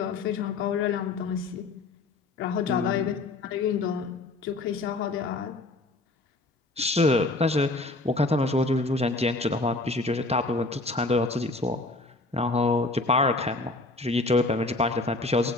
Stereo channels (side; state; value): right; quieter; 3.1 dB